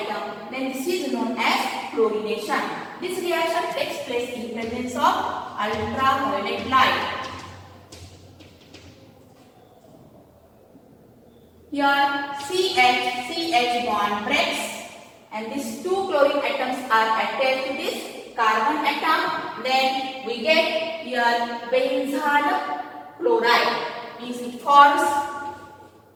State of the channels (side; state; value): both; identical; correlation 1.00